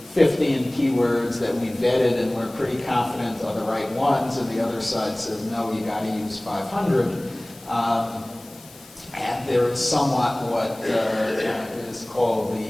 15 keywords that we vetted and we're pretty confident are the right ones, and the other side says, no, you got to use 500. And there is somewhat what is called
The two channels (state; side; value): noise; left; hiss, 23 dB below the sound